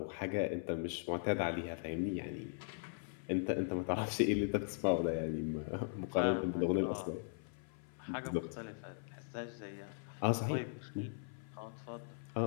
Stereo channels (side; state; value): right; silent; 52 dB below the other